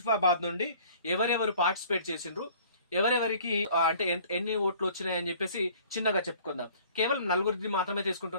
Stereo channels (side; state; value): both; inverted; correlation -0.52